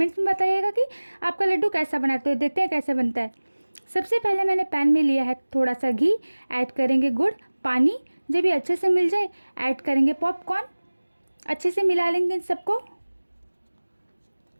में बताइएगा कि आपका लड्डू कैसा बना। तो देखते हैं कैसे बनता है। सबसे पहले मैंने पैन में लिया है थोड़ा सा घी, ऐड करेंगे गुड़, पानी। जब ये अच्छे से मिल जाए ऐड करेंगे पॉपकॉर्न। अच्छे से मिला लेंगे इन सबको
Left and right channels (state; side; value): inverted; both; correlation -1.00